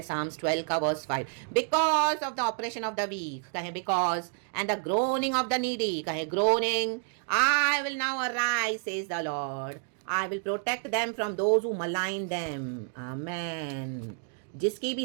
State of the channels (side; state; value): left; silent; 58 dB below the other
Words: Psalms 12 का verse 5, because of the oppression of the weak, कहे because, and the groaning of the needy, कहे groaning, I will now arise says the Lord, I will protect them from those who malign them. Amen. जिसकी